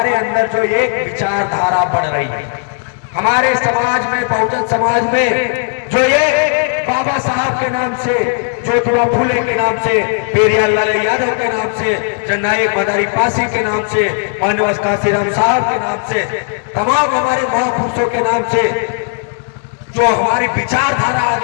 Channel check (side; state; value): right; silent; 61 dB below the other